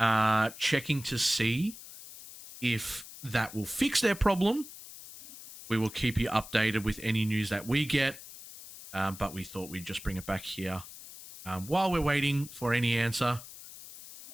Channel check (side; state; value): left; noise; hiss, 15 dB below the sound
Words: checking to see if that will fix their problem. We will keep you updated with any news that we get. But we thought we'd just bring it back here while we're waiting for any answer.